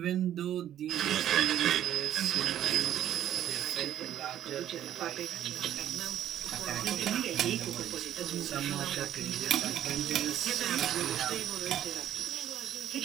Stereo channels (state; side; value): quieter; left; 11.2 dB